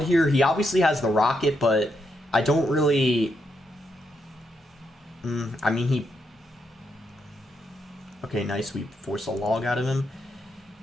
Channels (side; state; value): both; normal; correlation 0.80